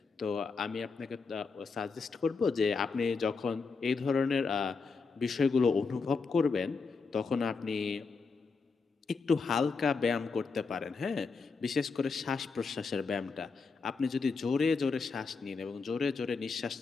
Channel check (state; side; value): quieter; right; 4.7 dB